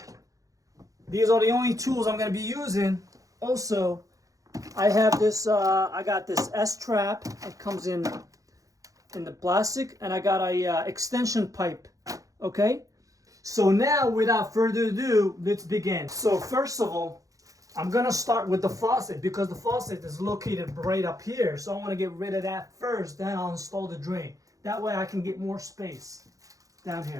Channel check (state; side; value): late; left; 0.16 ms